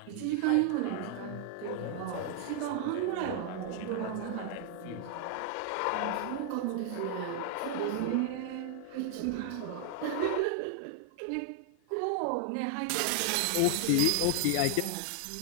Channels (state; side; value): different; both; correlation 0.00